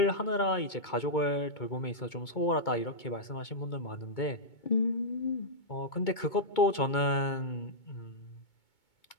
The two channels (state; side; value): late; right; 2.2 ms